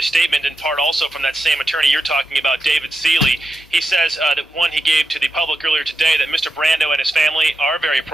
statement in part also from that same attorney you're talking about, David Seeley. He says that one he gave to the public earlier today that Mr. Brando and his family are very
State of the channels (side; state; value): both; normal; correlation 0.87